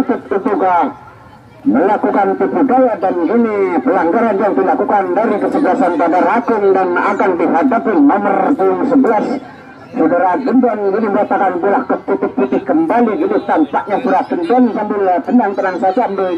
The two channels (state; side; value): identical; both; correlation 1.00